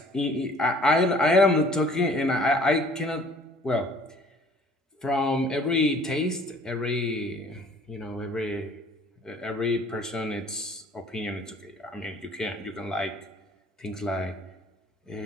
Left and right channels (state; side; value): normal; both; correlation 0.53